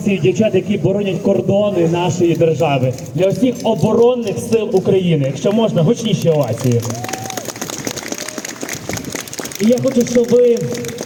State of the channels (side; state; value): both; identical; correlation 1.00